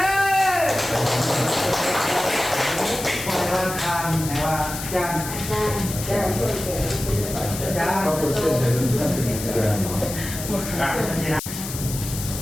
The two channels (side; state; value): left; noise; hiss, 8 dB below the sound